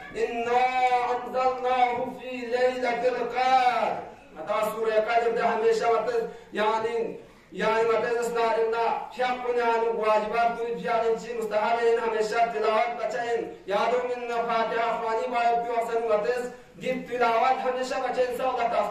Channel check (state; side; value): identical; both; correlation 1.00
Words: إنا أنزلناه في ليلة القدر متى سورة القدر ده هميشة يعني متى شاقنا عن واجبات كل يعني شيء مستحيل هميشة تلاوت بچين يادو من فاتحة خواني بايد بيوصل متى دين تلاوت هميشة بچين سوى